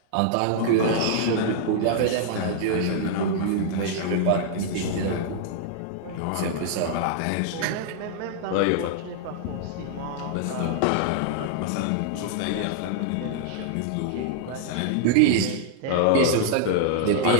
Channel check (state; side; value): different; both; correlation -0.01